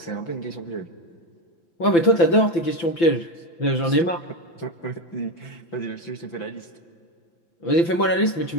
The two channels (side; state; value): right; late; 5.9 ms